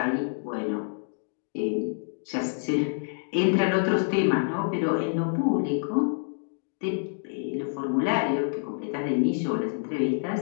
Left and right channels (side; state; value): right; silent; digital silence